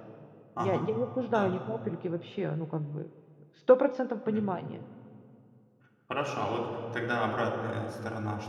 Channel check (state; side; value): identical; both; correlation 1.00